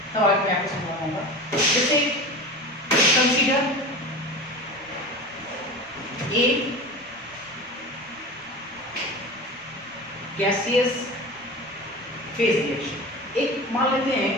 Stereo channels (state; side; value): noise; right; rumble, 29 dB below the sound